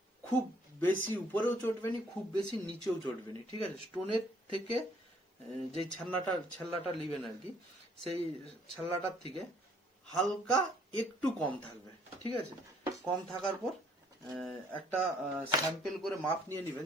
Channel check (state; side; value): normal; both; correlation 0.63